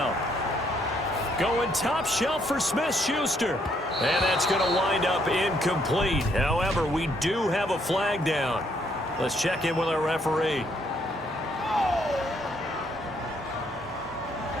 Going top shelf for Smith-Schuster. And that's going to wind up incomplete. However, we do have a flag down. Let's check in with our referee.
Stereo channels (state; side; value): normal; both; correlation 0.70